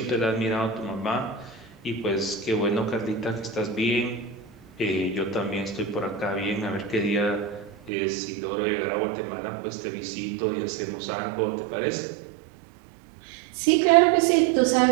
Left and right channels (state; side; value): drops out; left; at 7.9 s